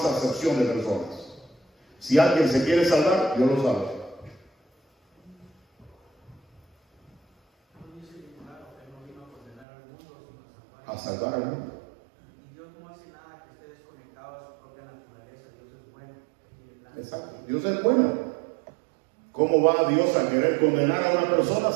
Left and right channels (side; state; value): left; drops out; at 9.7 s